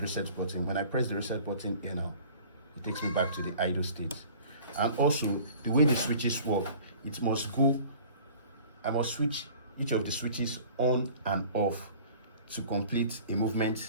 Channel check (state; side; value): inverted; both; correlation -0.47